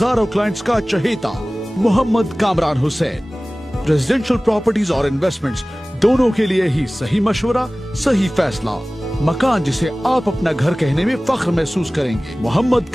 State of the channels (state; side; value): normal; both; correlation 0.98